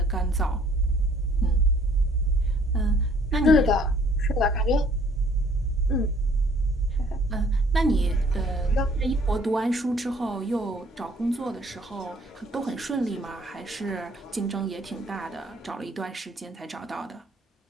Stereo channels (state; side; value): normal; both; correlation 0.60